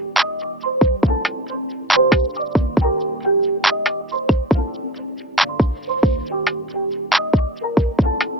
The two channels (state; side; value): normal; both; correlation 0.36